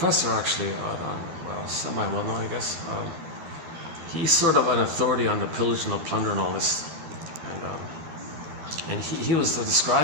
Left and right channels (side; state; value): left; late; 13 ms